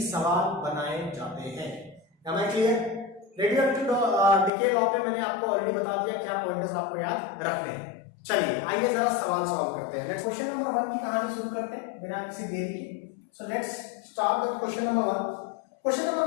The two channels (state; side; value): drops out; right; at 4.5 s